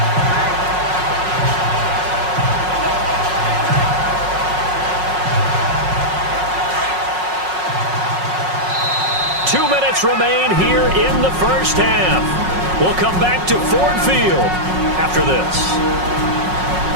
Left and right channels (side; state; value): left; late; 5.5 ms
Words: Two minutes remain here in the first half. We'll come back to Ford Field after this.